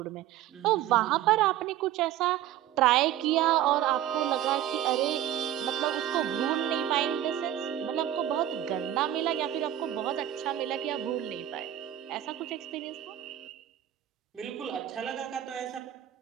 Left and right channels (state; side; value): quieter; left; 12.0 dB